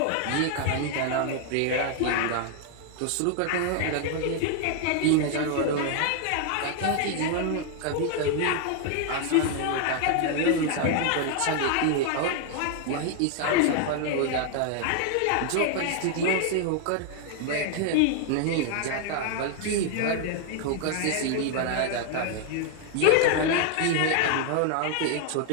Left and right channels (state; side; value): different; both; correlation 0.00